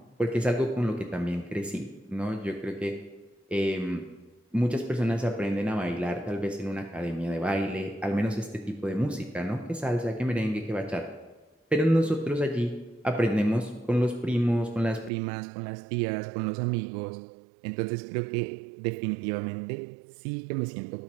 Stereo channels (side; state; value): left; drops out; at 15.1 s